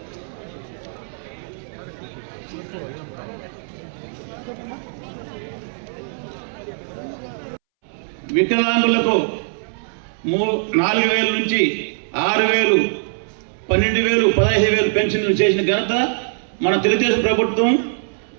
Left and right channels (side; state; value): left; silent; 65 dB below the other